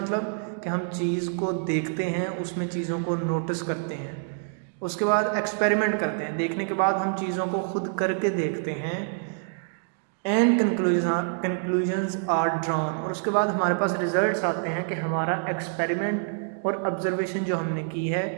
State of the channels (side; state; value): left; silent; 60 dB below the other